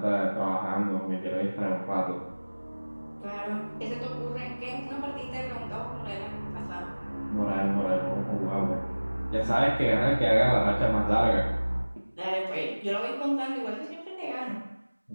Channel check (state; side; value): inverted; both; correlation -1.00